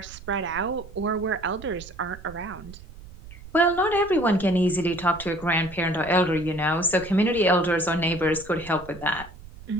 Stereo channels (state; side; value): noise; right; rumble, 17 dB below the sound